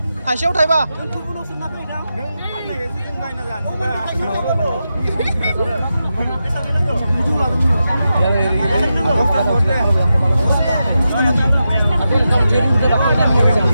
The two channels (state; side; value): inverted; both; correlation -0.89